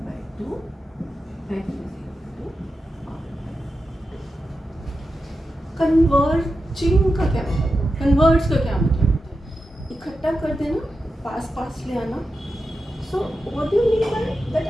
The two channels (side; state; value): both; normal; correlation 0.90